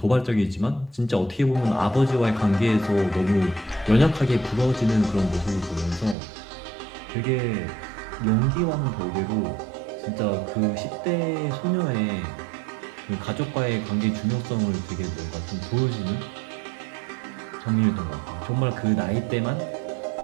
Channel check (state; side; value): drops out; left; at 6.2 s